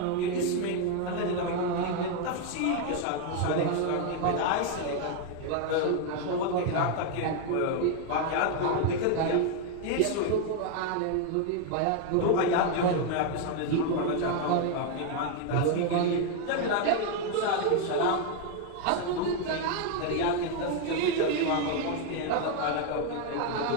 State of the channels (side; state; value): both; different; correlation 0.01